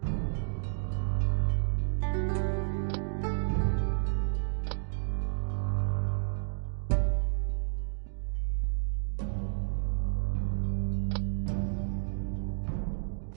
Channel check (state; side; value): silent; left; digital silence